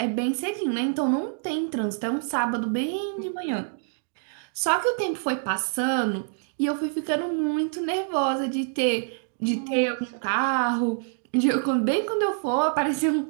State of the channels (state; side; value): silent; left; digital silence